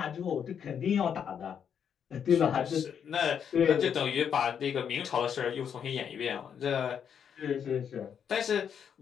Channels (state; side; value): quieter; right; 7.9 dB